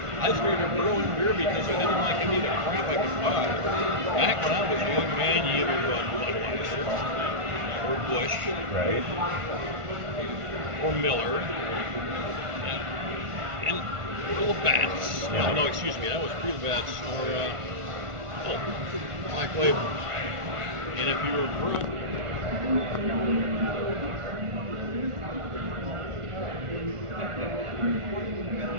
I started growing beer because I didn't like any of the crap I could buy. Back when I was a young man, you either bought Budweiser or Busch, right, or Miller, and little bats. Yeah. No, excuse me, that was real bats or Black Label. And if you were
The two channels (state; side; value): late; left; 1.4 ms